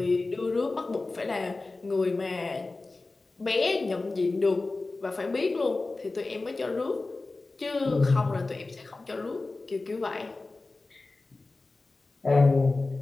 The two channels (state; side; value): quieter; right; 3.4 dB